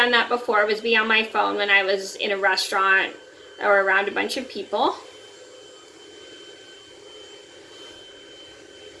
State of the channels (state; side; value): identical; both; correlation 1.00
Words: that before, was be on my phone when I was in a restaurant or around a bunch of people.